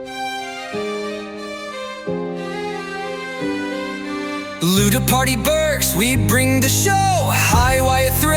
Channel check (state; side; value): identical; both; correlation 1.00